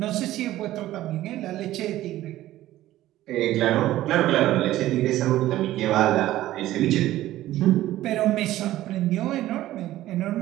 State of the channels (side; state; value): left; quieter; 14.7 dB